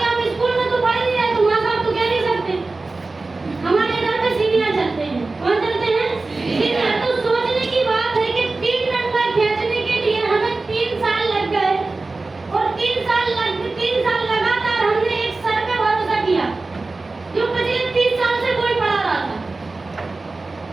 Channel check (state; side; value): quieter; left; 3.5 dB